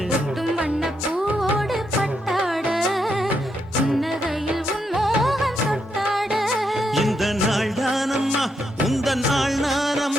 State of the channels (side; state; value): both; normal; correlation 0.80